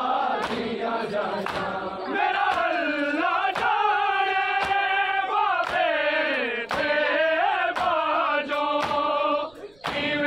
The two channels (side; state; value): right; noise; rumble, 30 dB below the sound